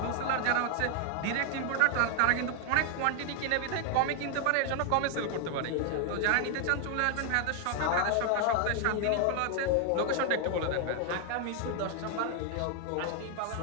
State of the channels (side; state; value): both; different; correlation 0.00